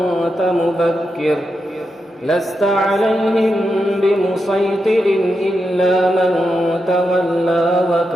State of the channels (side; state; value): both; normal; correlation 0.86